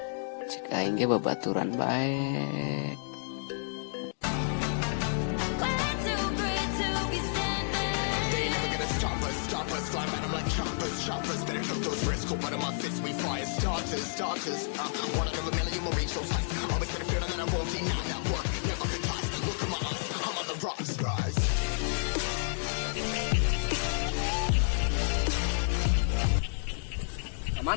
Cek aing ge babaturan bae.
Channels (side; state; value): right; silent; digital silence